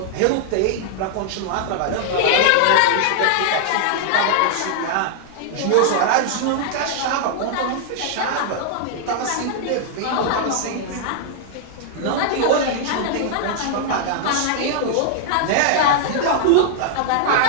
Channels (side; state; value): both; different; correlation -0.01